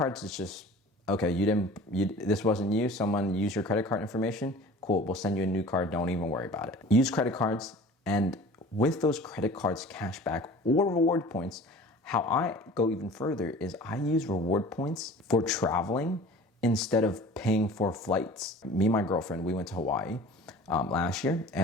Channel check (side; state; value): both; normal; correlation 0.43